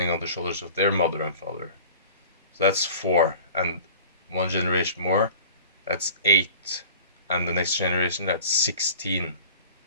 on the shoulders of their mother and father. So that's 4, and one generation more, that's 8, and the next generation, that's 16.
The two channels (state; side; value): inverted; both; correlation -0.42